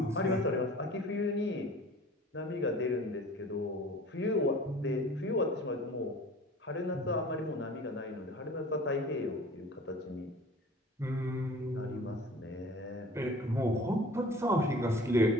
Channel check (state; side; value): normal; both; correlation 0.44